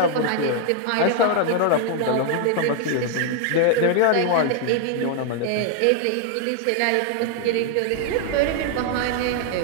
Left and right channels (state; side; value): different; both; correlation 0.00